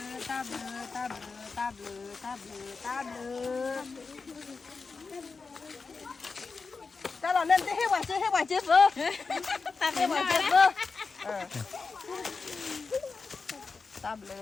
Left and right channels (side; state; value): right; quieter; 4.5 dB